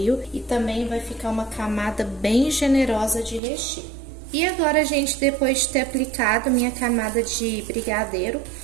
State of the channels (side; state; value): left; drops out; at 3.4 s